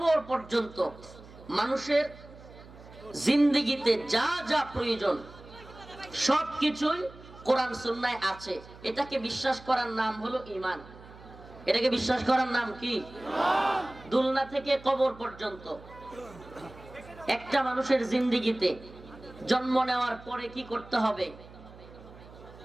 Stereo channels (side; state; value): right; noise; hum, 19 dB below the sound